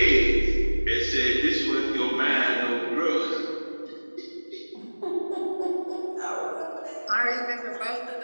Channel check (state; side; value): inverted; both; correlation -1.00